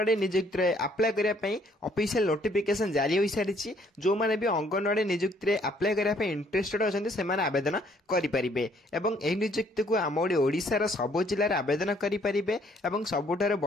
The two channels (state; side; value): normal; both; correlation 0.64